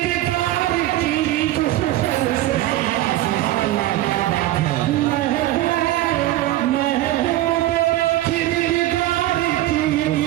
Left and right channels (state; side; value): quieter; left; 15.1 dB